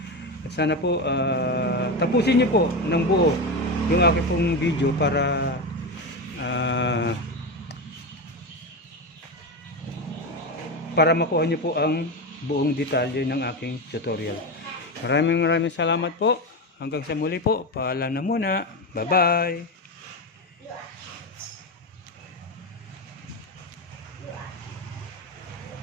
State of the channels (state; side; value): normal; both; correlation 0.17